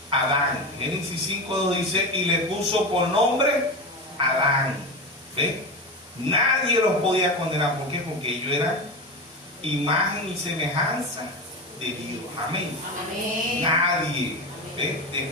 Adán. Génesis 5:2 dice: y le puso por nombre Adán. ¿Ve? Nadie los podía condenar. ¿Por qué? Porque ellos eran imagen y semejanza de Dios. Amén. Amén. Nadie. ¿Ve?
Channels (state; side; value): normal; both; correlation 0.22